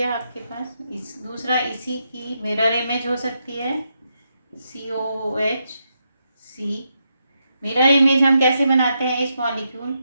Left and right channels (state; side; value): inverted; both; correlation -0.82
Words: आपके पास। दूसरा इसी की मिरर इमेज हो सकती है, COOH C। मिरर इमेज हम कैसे बनाते हैं? इस मॉलिक्यूल